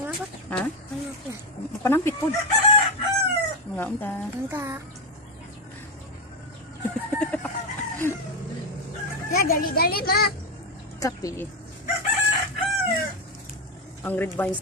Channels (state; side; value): normal; both; correlation 0.10